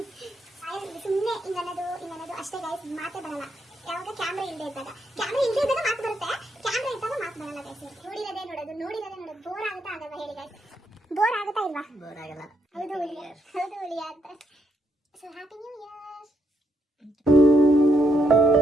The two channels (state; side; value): normal; both; correlation 0.77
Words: ಸುಮ್ಮನೆ ಇನ್ನನ್ನೋದು ಅಷ್ಟೇ ಗೈಸ್, ಮಾತೇ ಬರಲ್ಲ. ಯಾವಾಗ ಕ್ಯಾಮ್ರಾ ಇಲ್ಲದೆ ಇದ್ದಾಗ ಮಾತು ಬರುತ್ತೆ, ಕ್ಯಾಮ್ರಾ ಇದ್ದಾಗ ಮಾತು ಬರಲ್ಲ ಗೈಸ್. ನೋಡಿರೋದೇ ನೋಡೋದು ಬೋರ್ ಆಗುತ್ತಾ ಆಗಲ್ವಾ ಹೇಳಿ ಗೈಸ್? ಬೋರ್ ಆಗುತ್ತಾ ಇಲ್ವಾ? ಬೋರ್ ಆಗಲ್ಲ. ಹೌದು ಹುಲಿಯ ಅಂತ. So happy new year.